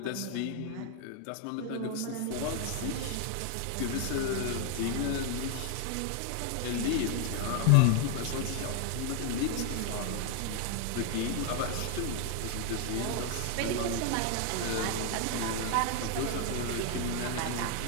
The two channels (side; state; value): both; different; correlation 0.00